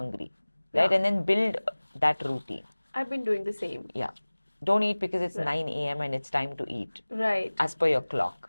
right? And then build that routine. I've been doing the same. Yeah. Don't eat because it's 9 a.m. and it's time to eat. As per your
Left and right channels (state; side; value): inverted; both; correlation -1.00